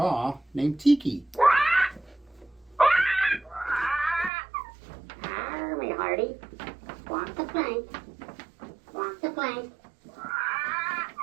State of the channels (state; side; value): drops out; left; at 4.3 s